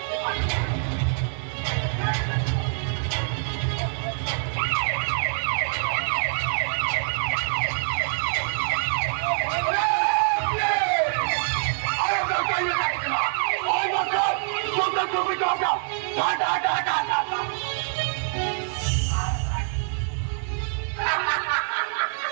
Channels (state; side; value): silent; left; digital silence